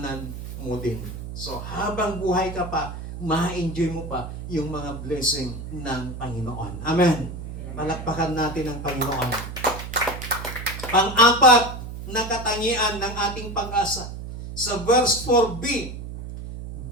mo din. So habang buhay ka pa, ma-enjoy mo pa yung mga blessing ng Panginoon. Amen. Malakpakan natin ang Panginoon. Pang-apat na katangian ng ating pag-asa. Sa verse 4b,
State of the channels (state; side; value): noise; right; hum, 9 dB below the sound